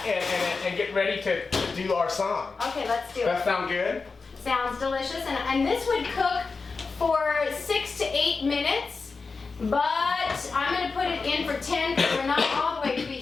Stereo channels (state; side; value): quieter; right; 4.4 dB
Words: and get ready to do our song. Okay, let's do That it. sound good? Sounds delicious, and this would cook for 6 to 8 minutes, but I'm gonna put it in for 10 because we're not all the way